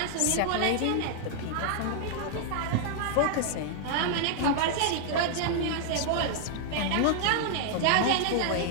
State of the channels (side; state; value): both; different; correlation -0.01